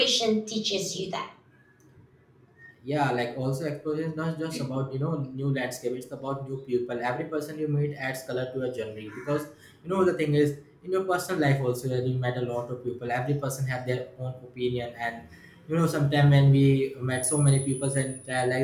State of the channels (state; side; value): identical; both; correlation 1.00